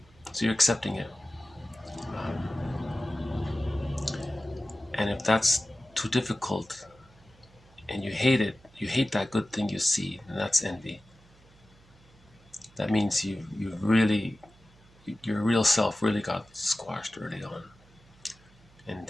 So you're accepting it. And if that's too difficult and you hate it, you hate that good thing you see, and that's envy. That means you really, your real self really got squashed early on. And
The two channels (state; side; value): noise; right; hum, 27 dB below the sound